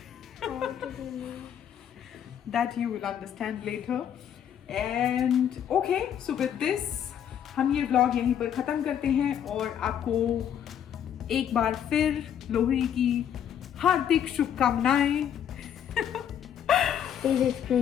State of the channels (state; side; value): quieter; right; 9.4 dB